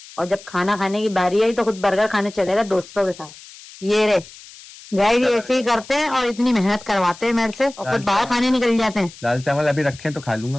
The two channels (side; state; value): left; noise; hiss, 19 dB below the sound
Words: और जब खाना खाने की बारी आई तो खुद बर्गर खाने चले गए दोस्तों के साथ। ये रे गाइस ऐसे ही करते हैं और इतनी मेहनत करवाते हैं मेरे से और खुद बाहर खाने निकल जाते हैं। दाल चावल अभी रखे हैं तो खा लूंगा